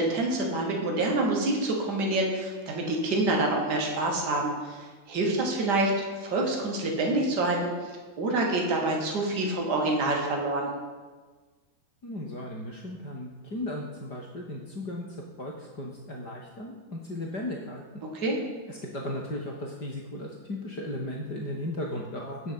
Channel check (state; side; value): late; right; 5.0 ms